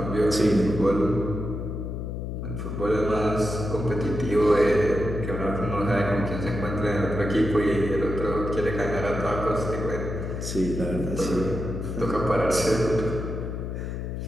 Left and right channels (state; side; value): noise; left; hum, 5 dB below the sound